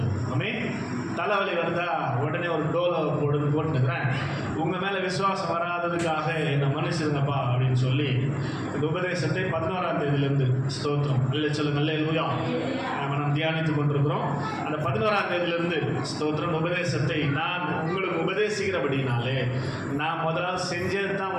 ஆமே தலைவலி வருதா உடனே ஒரு டோலை போட்டுக்கிறேன், உங்கள் மேலே விசுவாசம் வராததுக்காக என்னை மன்னிச்சிருங்கப்பா அப்படின்னு சொல்லி இந்த உபதேசத்தை 11ஆம் தேதியிலேருந்து ஸ்தோத்திரம் இல்லை சொல்லுங்க அல்லேலூயா நாம் தியானித்து கொண்டிருக்கிறோம். அந்த 11ஆம் தேதியிலேருந்து ஸ்தோத்திரம் உபதேசத்தை நான் உங்களுக்கு உபதேசிக்கிறபடினாலே நான் முதலாவது செஞ்சது தான்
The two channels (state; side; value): identical; both; correlation 1.00